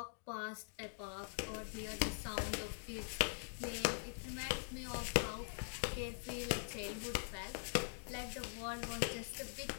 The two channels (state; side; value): silent; right; digital silence